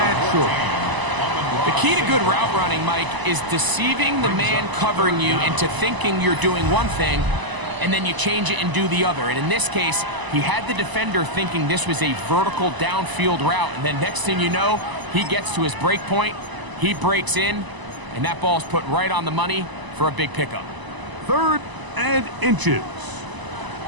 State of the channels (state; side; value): late; left; 1.0 ms